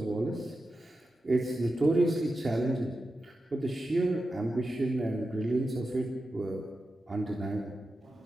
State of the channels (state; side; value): normal; both; correlation 0.91